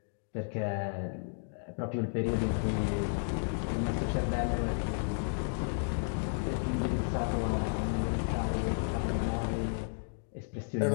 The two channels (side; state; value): right; silent; digital silence